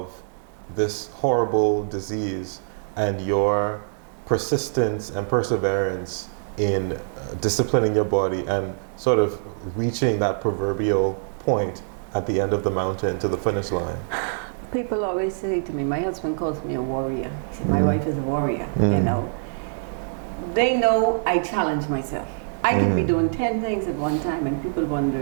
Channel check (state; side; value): silent; left; digital silence